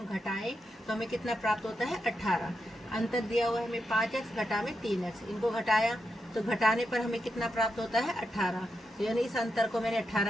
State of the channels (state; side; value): normal; both; correlation 0.85